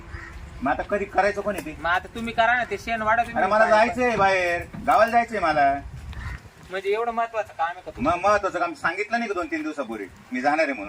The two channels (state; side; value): identical; both; correlation 1.00